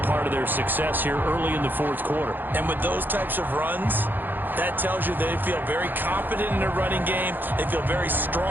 part of their success here early in the fourth quarter. And with those types of runs, that tells you they feel very confident in their running game. They feel very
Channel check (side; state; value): left; late; 0.091 ms